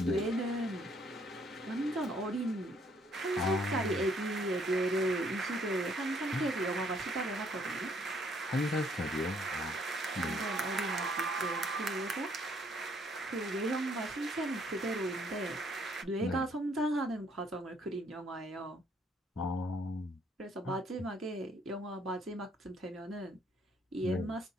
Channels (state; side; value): normal; both; correlation 0.66